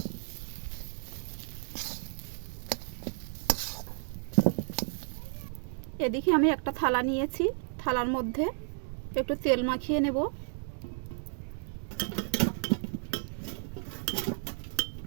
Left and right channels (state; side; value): silent; left; 56 dB below the other